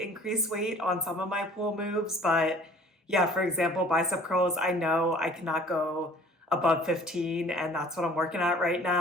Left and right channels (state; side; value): normal; both; correlation 0.52